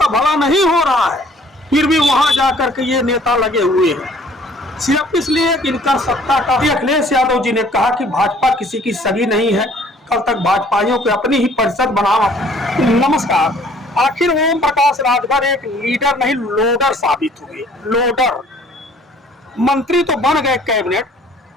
भला नहीं हो रहा है, फिर भी वहां जाकर के ये नेता लगे हुए हैं सिर्फ इसलिए कि इनका सत्ता का। अखिलेश यादव जी ने कहा कि भाजपा किसी की सगी नहीं है, कल तक भाजपाइयों को अपनी ही परिषद बनाना। नमस्कार। आखिर ओम प्रकाश राजभर एक लीडर नहीं लोडर साबित हुए। लोडर मंत्री तो बन गए कैबिनेट,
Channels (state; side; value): normal; both; correlation 0.56